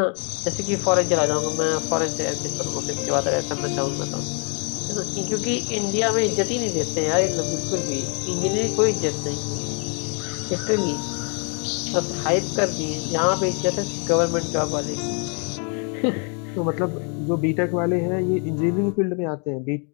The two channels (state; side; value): quieter; right; 37.8 dB